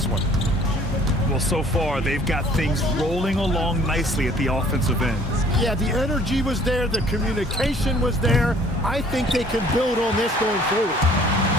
one? Well, so far they've got things rolling along nicely at the offensive end. Yeah, the energy was there. The communication was there. I think they can build on this going forward.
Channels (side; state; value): both; normal; correlation 0.56